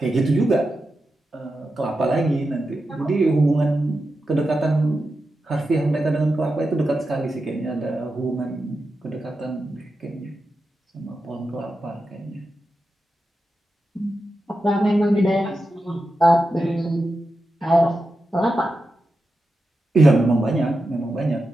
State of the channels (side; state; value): both; normal; correlation 0.90